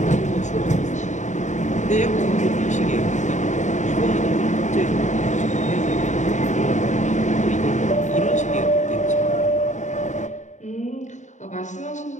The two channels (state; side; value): late; right; 0.35 ms